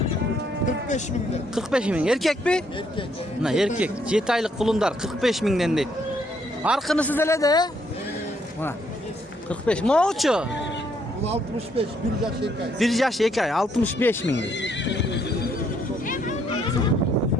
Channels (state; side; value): normal; both; correlation 0.71